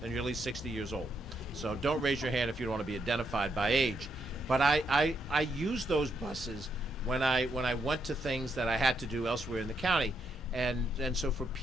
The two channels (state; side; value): normal; both; correlation 0.78